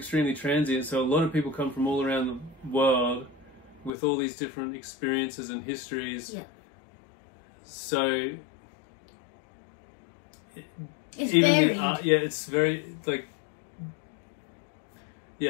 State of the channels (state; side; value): drops out; right; at 3.9 s